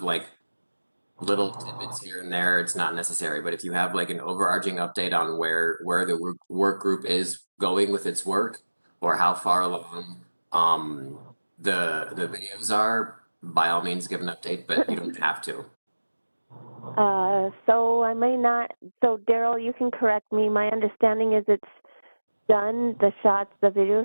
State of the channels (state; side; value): inverted; both; correlation -1.00